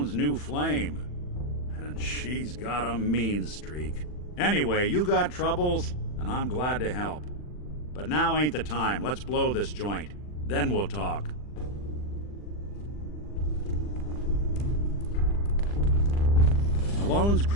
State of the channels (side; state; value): right; late; 40 ms